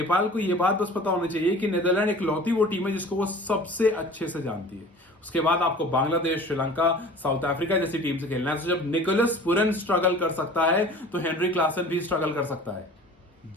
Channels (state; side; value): normal; both; correlation 0.43